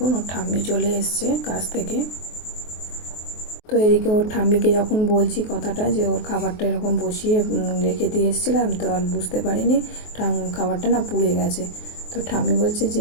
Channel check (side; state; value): right; late; 23 ms